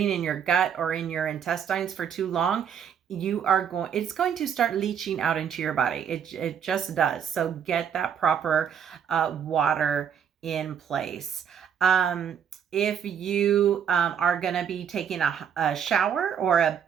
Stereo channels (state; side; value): quieter; left; 8.0 dB